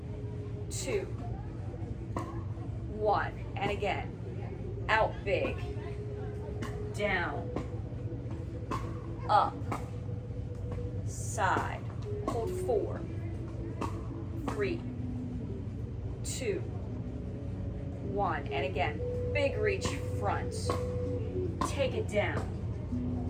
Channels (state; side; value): identical; both; correlation 1.00